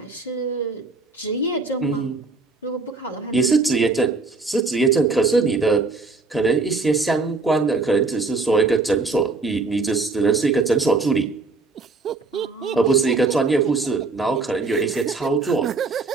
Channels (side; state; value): left; quieter; 3.9 dB